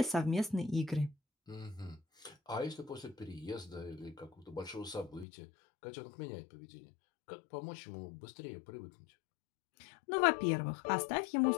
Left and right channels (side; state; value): right; drops out; at 5.2 s